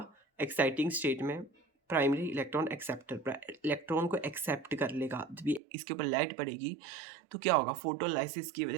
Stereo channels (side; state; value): left; drops out; at 5.6 s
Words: एक्साइटिंग स्टेट में प्राइमरी इलेक्ट्रॉन एक्सेप्टर इलेक्ट्रॉन को एक्सेप्ट कर लेगा। जब ये इसके ऊपर लाइट पड़ेगी तो क्या होगा, फोटोलाइसिस की